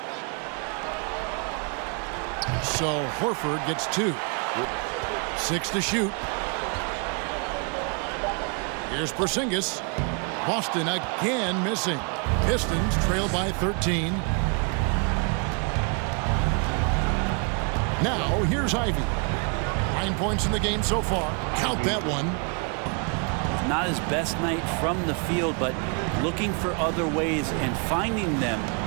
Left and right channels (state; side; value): quieter; left; 37.2 dB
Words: So Horford gets 2. 6 to shoot. Here's Porzingis. Boston again missing. Pistons trail by 13. Now here's Ivy. 9 points in the game so far. Count that one. Not his best night from the field, but looking for other ways and finding them